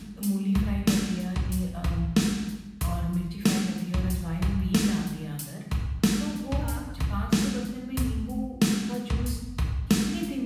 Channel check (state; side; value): identical; both; correlation 1.00